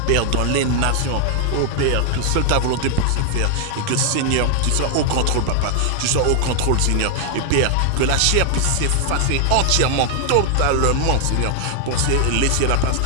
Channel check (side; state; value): both; different; correlation 0.00